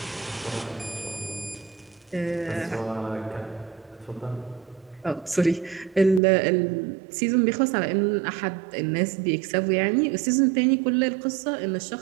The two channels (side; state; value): left; drops out; at 6.2 s